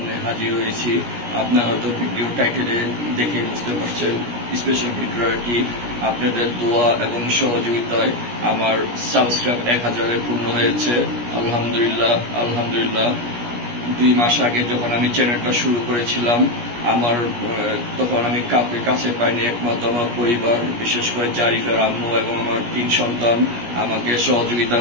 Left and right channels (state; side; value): late; left; 17 ms